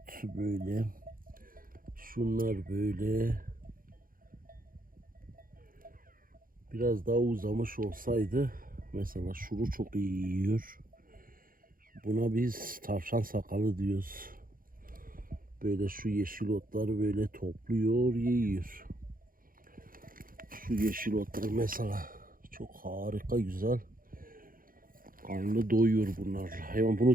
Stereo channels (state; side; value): late; left; 0.41 ms